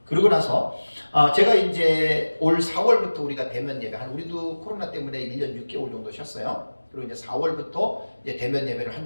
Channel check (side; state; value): both; inverted; correlation -1.00